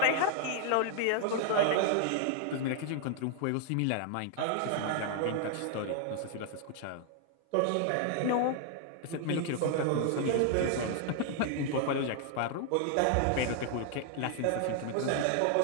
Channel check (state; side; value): different; both; correlation 0.00